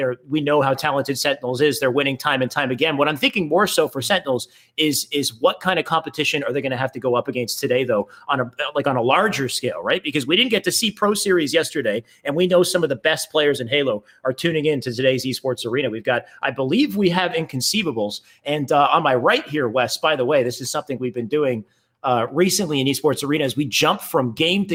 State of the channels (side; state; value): both; identical; correlation 1.00